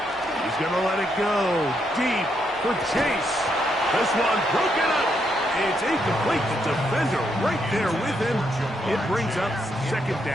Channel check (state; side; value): normal; both; correlation 0.77